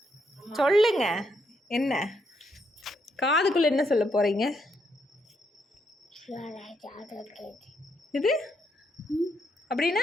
சொல்லுங்க. என்ன காதுக்குள்ள என்ன சொல்ல போறீங்க? இது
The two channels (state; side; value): normal; both; correlation 0.77